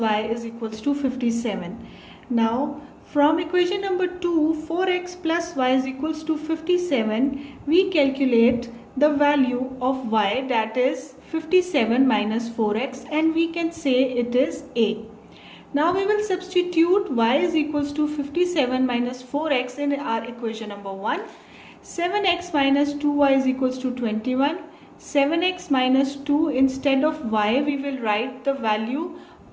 is equals to 57. Now from equation number 2, 4x plus y is equals to 57, we calculate the value of y, that is 57 minus 4x, and we can say it is A. Now we will substitute y is equals to 57 minus 4x in our equation number 1. 7x minus 2y is equals to 21. 7x minus 2, instead of y we will write the value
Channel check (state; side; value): identical; both; correlation 1.00